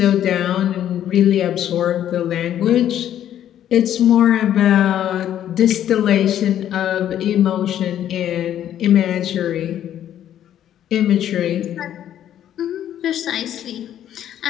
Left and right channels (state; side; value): quieter; right; 10.9 dB